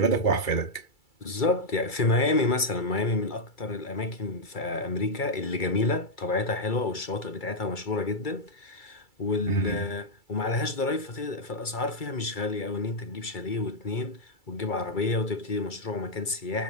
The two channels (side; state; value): right; late; 2.3 ms